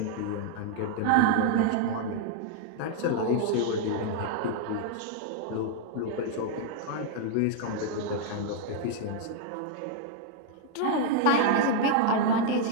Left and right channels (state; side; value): different; both; correlation -0.01